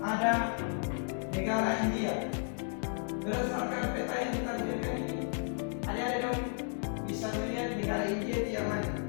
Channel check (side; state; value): right; silent; 56 dB below the other